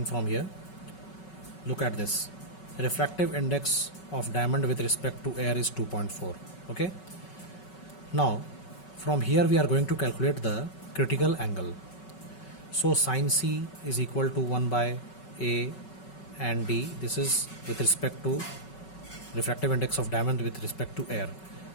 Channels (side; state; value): right; late; 5.3 ms